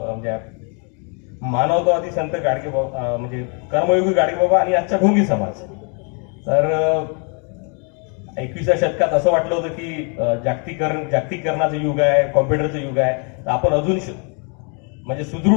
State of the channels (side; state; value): right; quieter; 37.6 dB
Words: मानवतावादी संत गाडगेबाबा म्हणजे कर्मयोगी गाडगेबाबा आणि आजचा ढोंगी समाज. तर 21व्या शतकात असं वाटलं होतं की जागतिकीकरणाचं युग आहे, कॉम्प्युटरचं युग आहे, तर आपण अजून म्हणजे